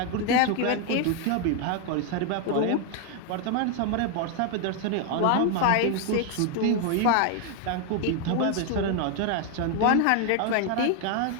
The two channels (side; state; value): both; different; correlation 0.00